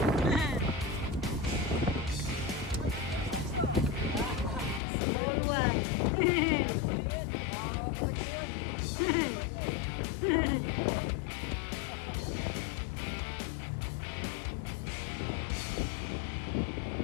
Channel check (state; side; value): drops out; right; at 4.8 s